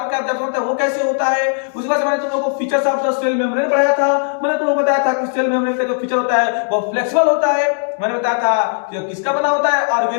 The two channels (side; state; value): right; silent; 63 dB below the other